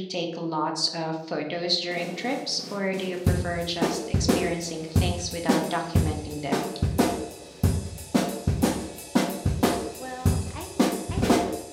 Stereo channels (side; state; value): both; identical; correlation 1.00